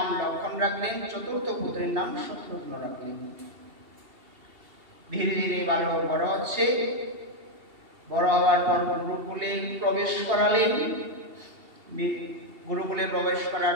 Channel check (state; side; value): late; left; 2.7 ms